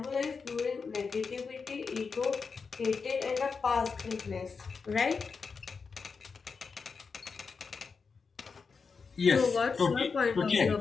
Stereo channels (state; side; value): quieter; right; 5.1 dB